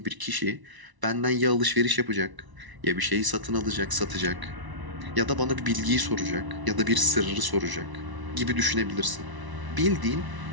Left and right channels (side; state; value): left; late; 1.0 ms